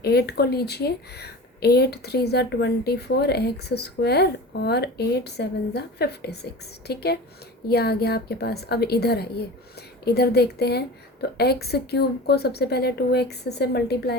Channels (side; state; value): both; normal; correlation 0.34